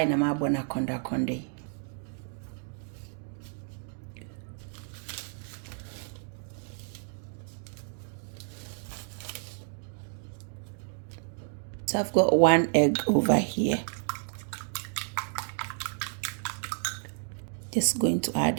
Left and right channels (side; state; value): left; silent; 57 dB below the other